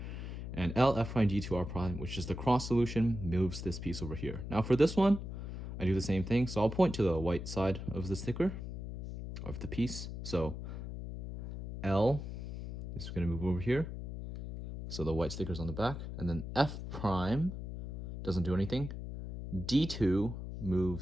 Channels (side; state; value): left; noise; hum, 7 dB below the sound